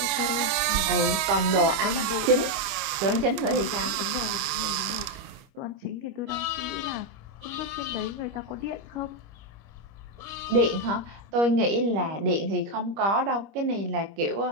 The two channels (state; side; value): late; left; 25 ms